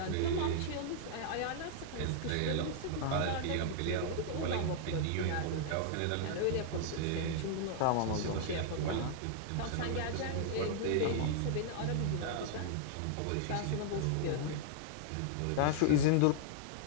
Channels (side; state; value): both; different; correlation -0.01